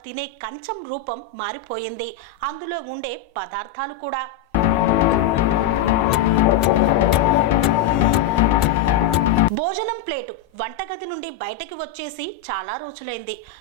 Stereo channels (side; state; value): right; quieter; 7.9 dB